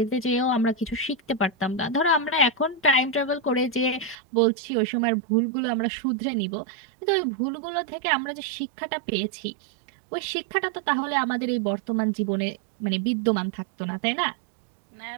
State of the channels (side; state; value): left; drops out; at 4.2 s